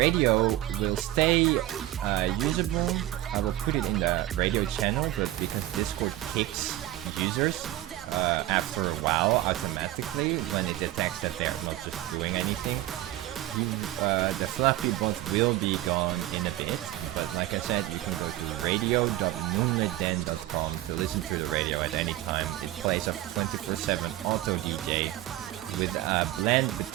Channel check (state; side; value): quieter; left; 15.3 dB